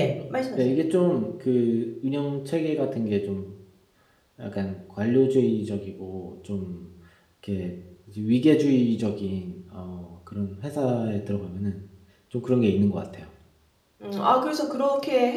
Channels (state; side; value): identical; both; correlation 1.00